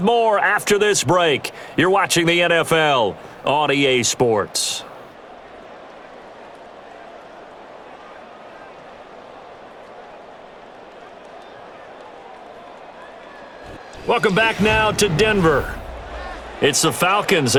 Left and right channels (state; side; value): identical; both; correlation 1.00